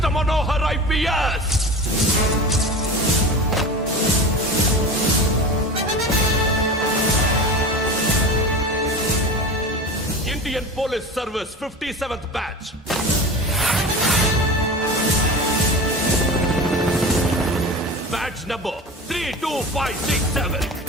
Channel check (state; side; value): normal; both; correlation 0.31